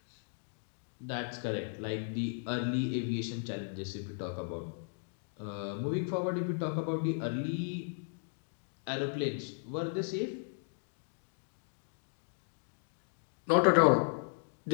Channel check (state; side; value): silent; right; digital silence